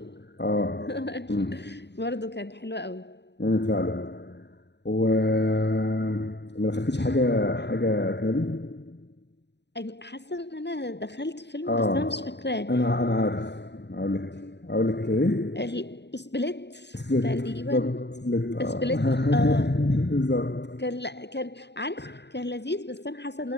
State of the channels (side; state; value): right; late; 0.50 ms